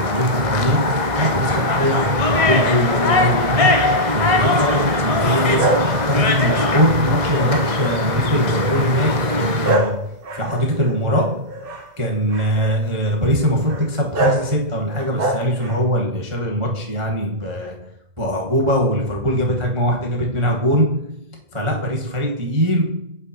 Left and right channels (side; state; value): left; late; 2.0 ms